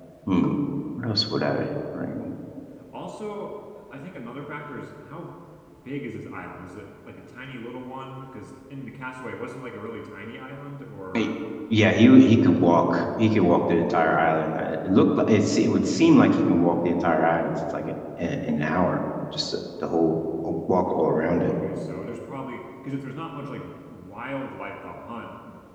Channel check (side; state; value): both; identical; correlation 1.00